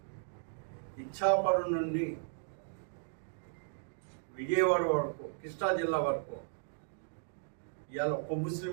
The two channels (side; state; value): left; silent; digital silence